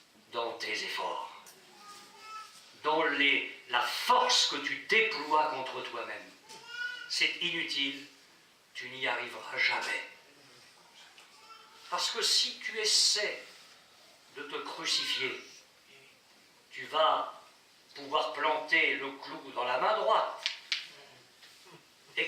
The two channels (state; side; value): identical; both; correlation 1.00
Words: dans tes efforts, dans la force que tu déploies contre toi-même. C'est inutile, tu n'y arriveras jamais. Parce que si tu essaies de te crucifier, tu vas pouvoir planter le clou dans la main droite. Et